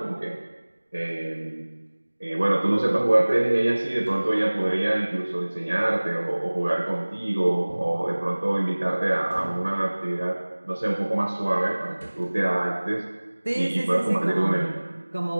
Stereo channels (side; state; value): both; inverted; correlation -1.00